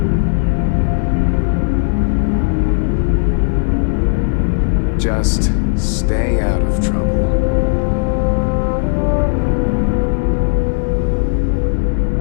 Just stay out of trouble.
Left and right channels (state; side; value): silent; right; 63 dB below the other